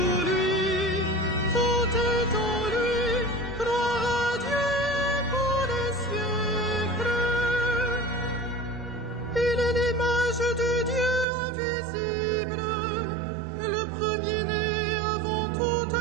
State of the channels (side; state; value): left; drops out; at 11.2 s